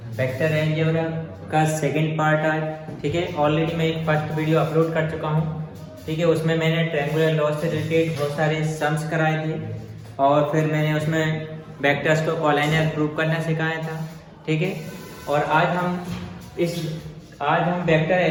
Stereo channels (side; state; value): both; identical; correlation 1.00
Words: Vector algebra का second part है। ठीक है, ऑलरेडी मैं एक फर्स्ट वीडियो अपलोड कर चुका हूँ। ठीक है, उसमें मैंने ट्रायंगुलर लॉस से रिलेटेड बहुत सारे सम्स कराए थे और फिर मैंने उसमें वेक्टर्स को कॉलाइनर प्रूव करना सिखाया था। ठीक है, और आज हम वेक्टर